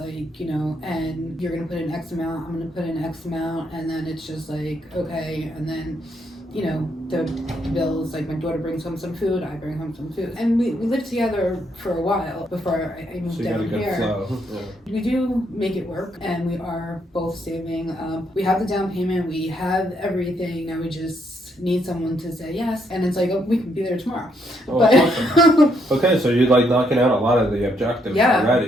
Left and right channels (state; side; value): normal; both; correlation 0.74